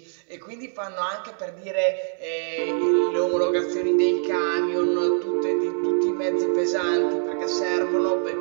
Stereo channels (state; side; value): silent; left; 63 dB below the other